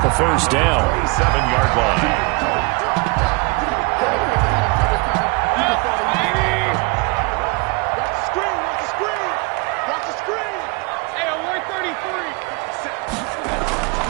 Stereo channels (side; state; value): left; quieter; 28.3 dB